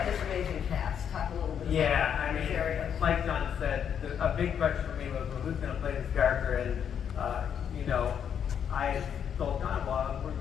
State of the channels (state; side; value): quieter; right; 8.2 dB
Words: this amazing cast. Talk a little bit about I mean, areas. like Jon said, a big question for me was, well, who's going to play this character? And, I told Jon, well,